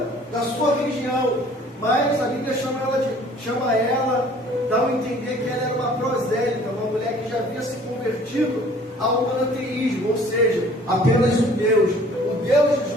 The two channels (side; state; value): both; normal; correlation 0.53